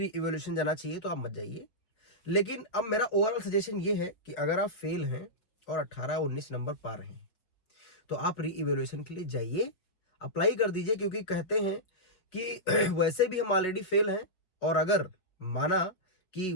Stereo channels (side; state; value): right; late; 5.5 ms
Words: इवोल्यूशन जाना चाहिए तो आप मत जाइए। लेकिन अब मेरा ओवरऑल सजेशन ये है कि अगर आप फेल हैं और 18-19 नंबर पा रहे हैं तो आप री इवोल्यूशन के लिए जाइए, अप्लाई कर दीजिए। क्योंकि कहते हैं कि वैसे भी हम ऑलरेडी फेल हैं, और अगर माना कि